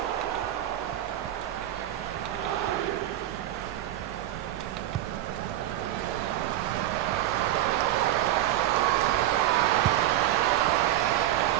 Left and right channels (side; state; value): left; quieter; 13.5 dB